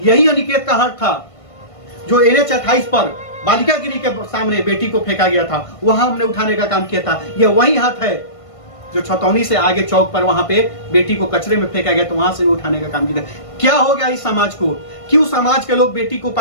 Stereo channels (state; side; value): late; right; 1.5 ms